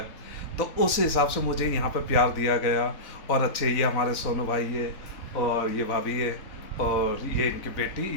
तो उस हिसाब से मुझे यहाँ पे प्यार दिया गया। और अच्छे ये हमारे सोनू भाई है और ये भाभी है और ये इनकी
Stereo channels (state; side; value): late; right; 3.9 ms